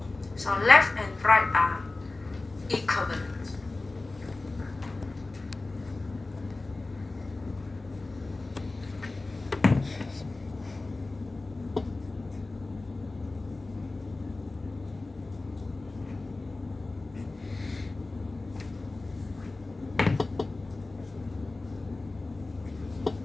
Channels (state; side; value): quieter; right; 3.2 dB